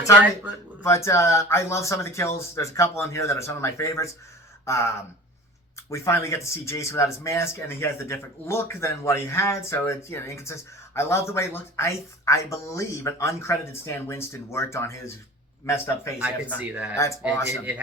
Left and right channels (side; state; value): both; normal; correlation 0.39